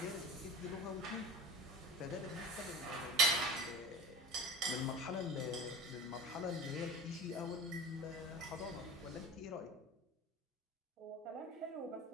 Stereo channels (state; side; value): normal; both; correlation 0.35